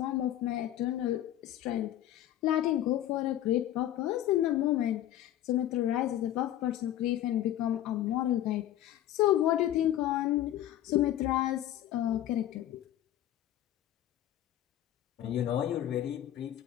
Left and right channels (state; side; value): quieter; right; 12.5 dB